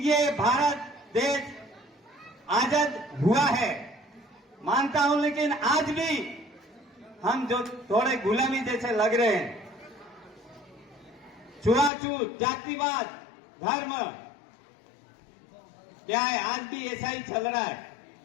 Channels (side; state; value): right; drops out; at 11.9 s